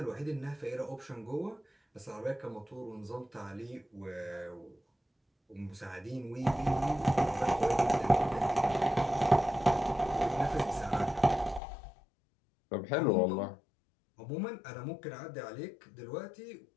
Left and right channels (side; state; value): right; drops out; at 11.6 s